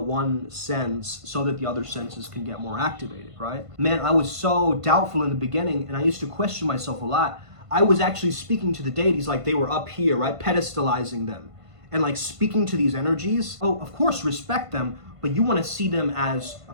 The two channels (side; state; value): left; late; 1.5 ms